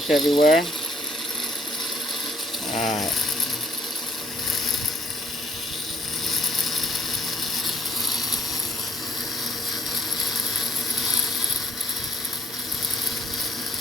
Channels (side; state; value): both; normal; correlation 0.64